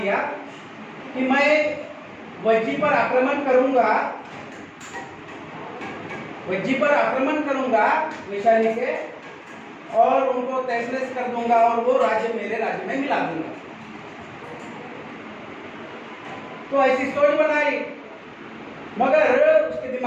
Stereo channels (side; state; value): both; identical; correlation 1.00